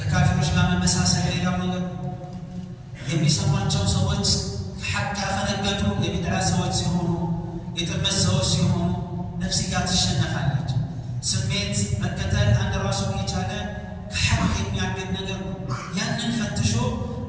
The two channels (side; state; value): both; identical; correlation 1.00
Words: ጋር መመሳሰል ሌላው ነገር ነው። የሚሰሟቸው ሰዎች ሐቅ ያፈነገጡ የቢድዓ ሰዎች ሲሆኑ፣ የጥመት ሰዎች ሲሆኑ ነፍስያ ትሸነፋለች። ስሜት መከተል አንድ ራሱን የቻለ ከሐቅ የሚያገድ ነገር ነው። ያንን ፈትሾ